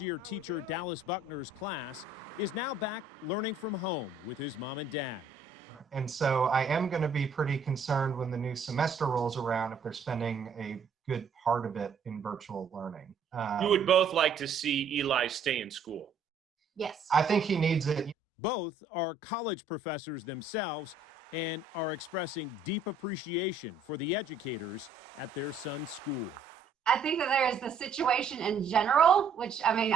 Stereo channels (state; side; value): quieter; left; 4.2 dB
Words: teacher Dallas Buckner's class, is now back learning from home with his mom and dad. And so I am going to be pretty concerned when the new semester rolls around if they're spending a good part of it in virtual learning. You would both like to see Eli stay in school. Yes. I think he needs it. Both are college professors themselves and are expressing deep appreciation for the educators at their son's school. I think that there is the situation in general, which, I